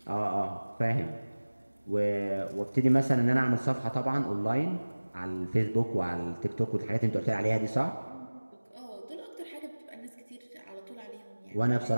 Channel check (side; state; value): both; inverted; correlation -1.00